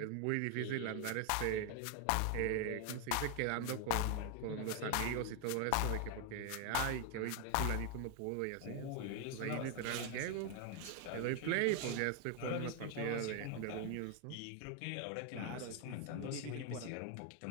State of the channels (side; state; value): both; different; correlation 0.00